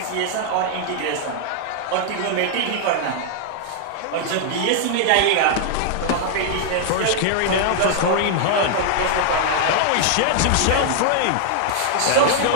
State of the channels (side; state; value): both; different; correlation -0.01